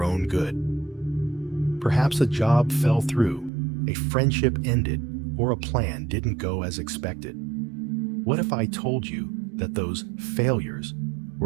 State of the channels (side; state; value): left; drops out; at 3.5 s